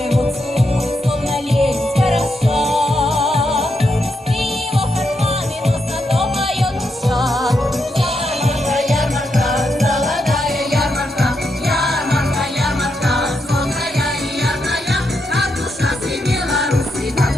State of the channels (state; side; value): normal; both; correlation 0.82